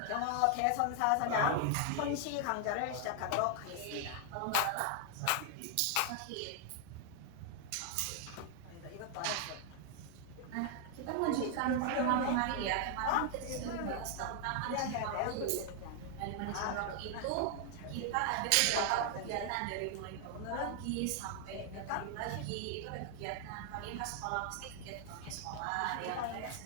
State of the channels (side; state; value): both; different; correlation 0.00